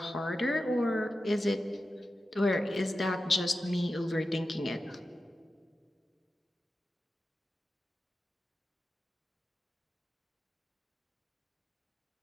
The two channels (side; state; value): both; normal; correlation 0.92